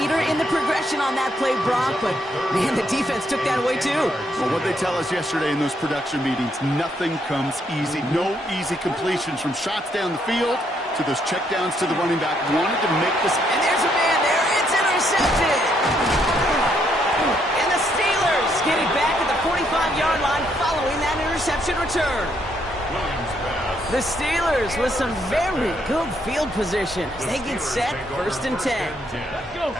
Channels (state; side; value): normal; both; correlation 0.73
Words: in the progression on that play, Brock, but, man, the defense took that away, too. Well, what they tell us yesterday in those production meetings, nothing comes easy. No easy completions from shots down the field to those checkdowns to the running back. Wanted to make this. And there's a man there. It's intercepted. And the Steelers get it back at the 45-yard line following that interception return. The Steelers with some very good field position as they get set 1st and 10. And